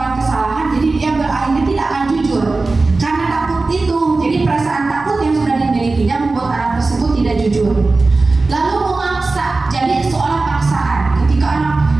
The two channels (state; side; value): quieter; left; 3.5 dB